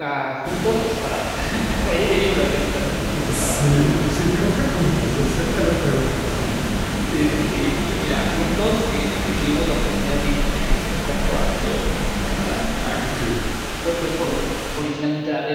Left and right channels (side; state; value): both; identical; correlation 1.00